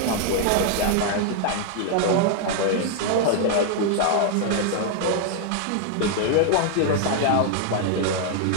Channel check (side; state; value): both; different; correlation 0.00